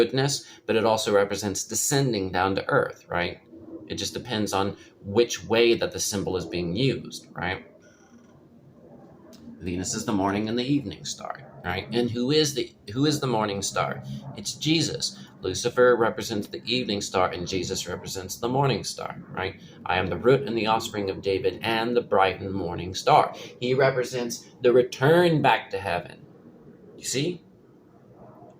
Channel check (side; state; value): both; identical; correlation 1.00